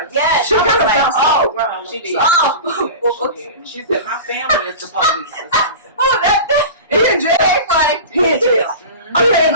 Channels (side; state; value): both; inverted; correlation -0.32